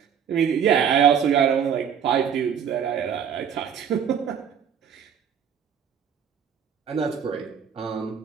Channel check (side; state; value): left; quieter; 8.0 dB